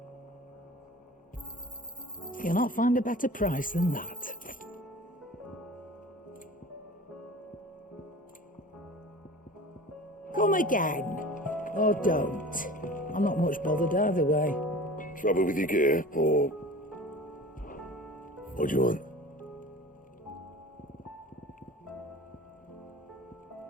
You'll not find a better price than that. Come again. Or don't. I'm not much bothered either way. Trouble with your gear, or... What do you want?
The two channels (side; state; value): both; normal; correlation 0.40